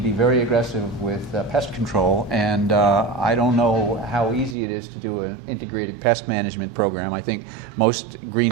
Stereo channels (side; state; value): left; drops out; at 4.5 s